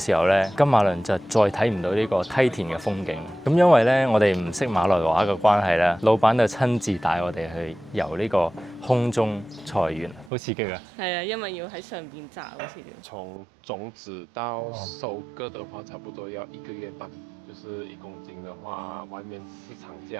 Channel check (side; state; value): left; drops out; at 10.3 s